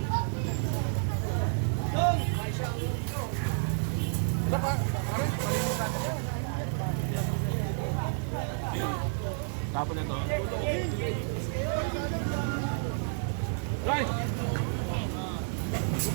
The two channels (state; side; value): silent; left; 58 dB below the other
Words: Tapos na to. Right!